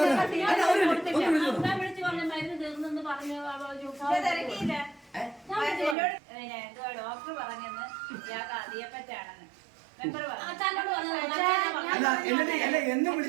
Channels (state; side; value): drops out; left; at 6.0 s